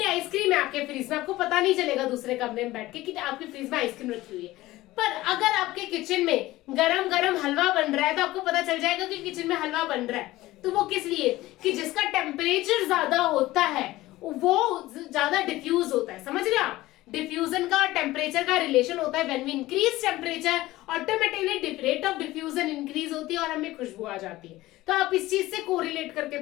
आइसक्रीम है आपके फ्रिज में, आपको पता नहीं चलेगा दूसरे कमरे में बैठ के कि आपके फ्रिज में आइसक्रीम रखी हुई है। पर अगर आपके किचन में गरम गरम हलवा बन रहा है तो आपको पता चल जाएगा कि किचन में हलवा बन रहा है। तो वो किस लिए, कि जिसका टेम्परेचर ज्यादा होता है वो ज्यादा डिफ्यूज होता है। समझ रहे आप, डिफ्यूजन का और टेम्परेचर का रिलेशन होता है। When we increase temperature automatically rate of diffusion increase होती है और हमें खुशबू आ जाती है। तो आप इस चीज से कोरिलेट करके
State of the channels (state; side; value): quieter; right; 17.5 dB